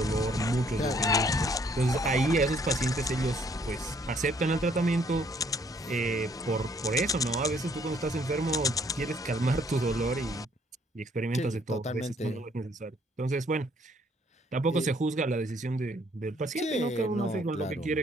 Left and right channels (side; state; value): both; normal; correlation 0.64